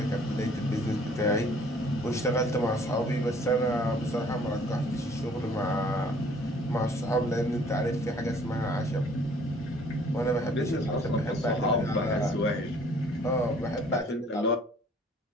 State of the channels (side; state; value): both; normal; correlation 0.57